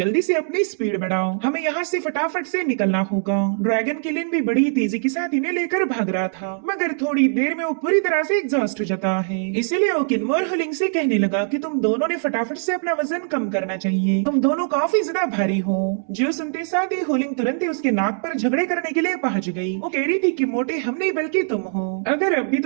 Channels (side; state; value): left; silent; 64 dB below the other